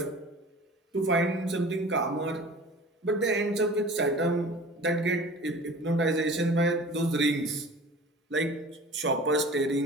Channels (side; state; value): both; normal; correlation 0.41